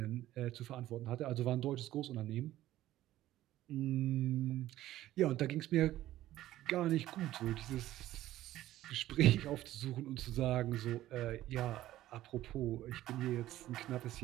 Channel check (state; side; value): quieter; left; 14.5 dB